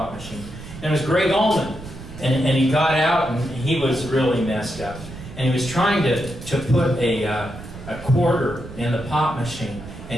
machine. And it was Greg Allman. And he got out, and he was really messed up. And he was trying to put a quarter in the pop machine,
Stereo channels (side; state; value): right; noise; rumble, 13 dB below the sound